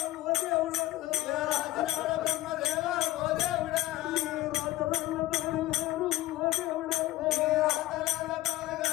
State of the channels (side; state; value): right; quieter; 16.2 dB